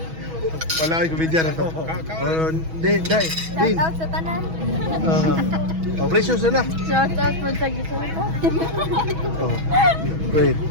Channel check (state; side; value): late; left; 6.2 ms